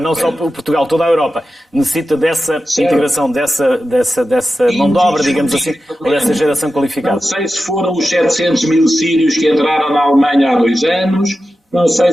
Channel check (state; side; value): normal; both; correlation 0.92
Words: só Portugal, toda a Europa, necessita dessa integração, dessa mão de obra, digamos assim, ou dessa geração qualificada. Não sei se foram os 700 mil sírios que entraram na Alemanha há 2 anos, não